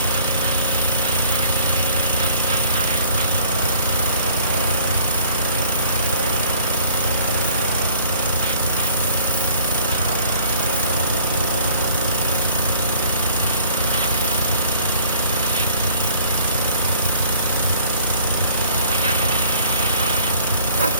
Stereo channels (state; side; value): inverted; both; correlation -0.55